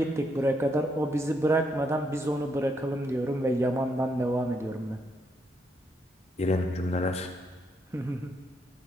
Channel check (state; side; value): normal; both; correlation 0.77